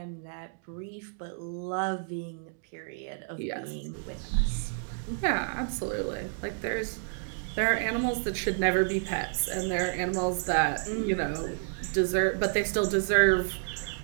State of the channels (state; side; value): silent; left; digital silence